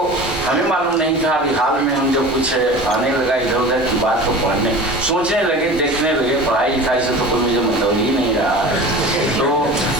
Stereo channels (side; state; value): both; normal; correlation 0.36